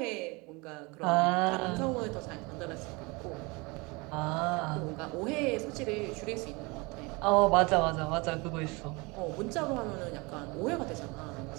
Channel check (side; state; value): left; quieter; 26.4 dB